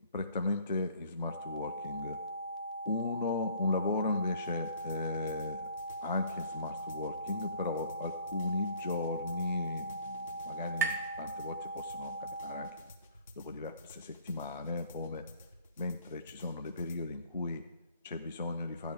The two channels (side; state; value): both; inverted; correlation -0.56